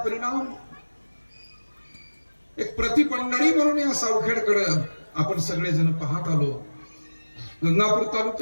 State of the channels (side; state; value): both; inverted; correlation -1.00